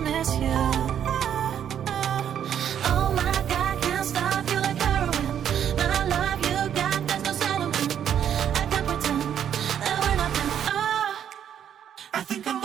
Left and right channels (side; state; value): left; quieter; 9.3 dB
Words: miss you. Oh my God, can't stop you like heroin. My love you got, there's no settlement. I can't pretend that we're nothing. Oh, I think I'm